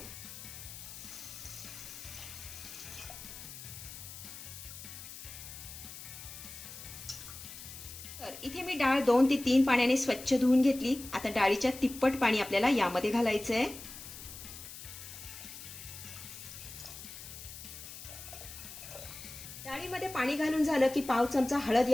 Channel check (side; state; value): left; noise; hiss, 12 dB below the sound